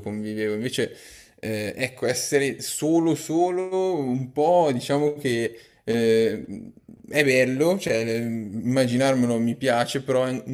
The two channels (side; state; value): both; identical; correlation 1.00